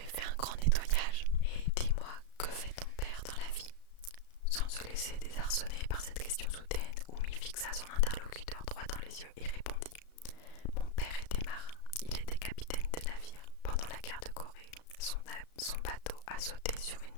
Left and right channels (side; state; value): right; late; 34 ms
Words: fait un grand nettoyage et dis-moi, que fait ton père dans la vie? Sans se laisser désarçonner par cette question soudaine, Umi fixa son interlocuteur droit dans les yeux et répondit. Mon père était marin, il était capitaine de navire. Pendant la guerre de Corée, son bateau a sauté sur une